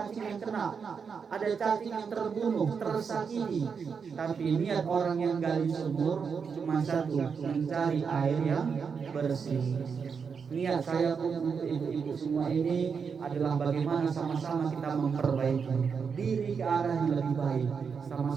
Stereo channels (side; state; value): left; quieter; 6.0 dB